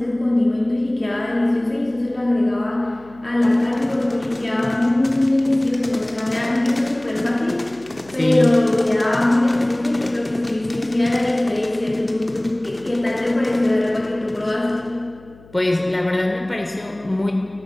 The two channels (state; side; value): noise; left; hum, 24 dB below the sound